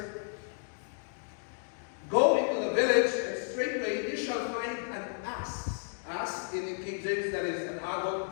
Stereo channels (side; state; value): right; silent; digital silence